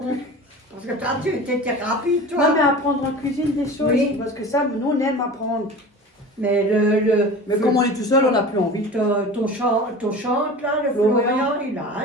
Parce que toi, tu étais rapide, toi. Non mais apprendre en cuisine des choses. Oui. Parce que ça, nous on aime apprendre. Mais Mais comme on est tout seul, on n'a plus envie. ton chante, là, le Florian. Florian, il a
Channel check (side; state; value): both; normal; correlation 0.36